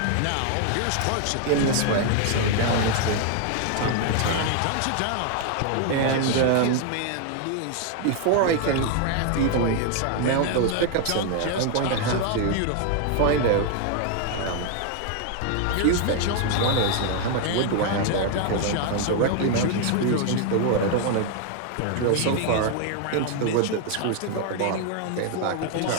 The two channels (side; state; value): both; different; correlation 0.01